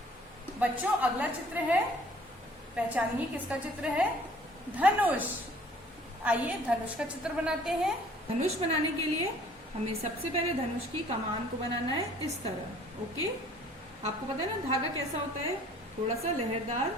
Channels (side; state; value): both; normal; correlation 0.55